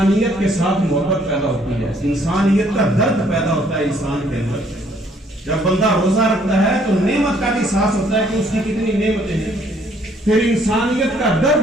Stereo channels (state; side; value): normal; both; correlation 0.64